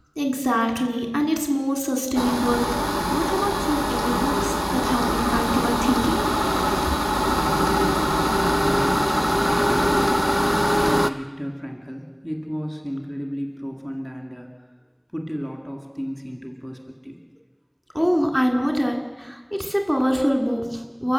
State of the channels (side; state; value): both; identical; correlation 1.00